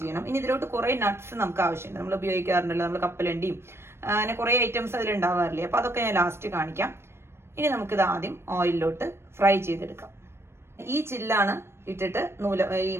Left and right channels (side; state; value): left; late; 0.12 ms